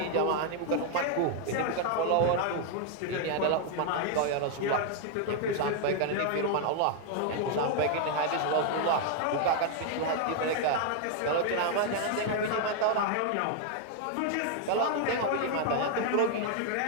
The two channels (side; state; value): both; different; correlation 0.00